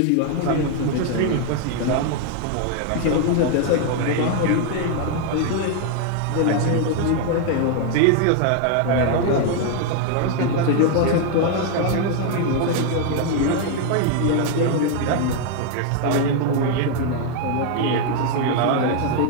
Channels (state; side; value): different; both; correlation 0.00